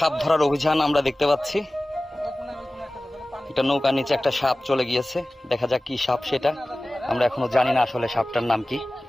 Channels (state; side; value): normal; both; correlation 0.97